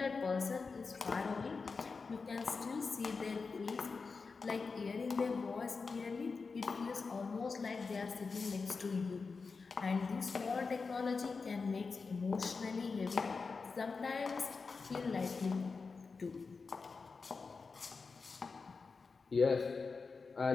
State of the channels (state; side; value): quieter; right; 4.6 dB